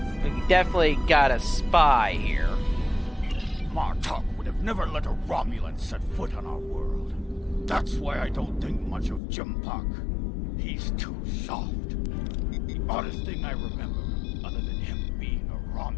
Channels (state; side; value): drops out; right; at 9.2 s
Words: We definitely got a spy here. Martok would have never let a Romulan set foot on our world. That's why I don't think much of Jimpak. He's too soft. The oddest thing I remember, other than him being a